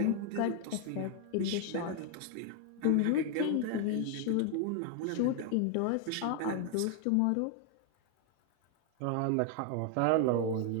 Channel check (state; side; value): different; both; correlation 0.00